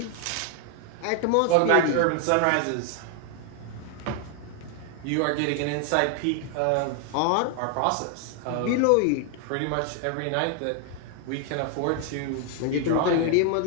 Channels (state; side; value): different; both; correlation 0.00